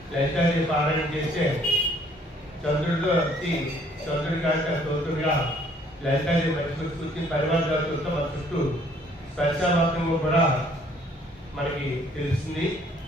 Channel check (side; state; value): both; normal; correlation 0.61